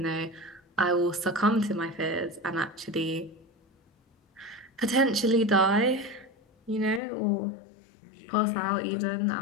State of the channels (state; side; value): drops out; right; at 7.0 s